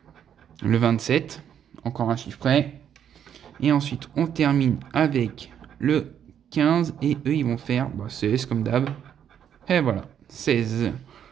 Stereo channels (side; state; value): left; quieter; 9.1 dB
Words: le 27, encore un chiffre près. Et ensuite, on termine avec le 15 et eux, ils vont faire 16 comme d'hab. Et voilà, 16.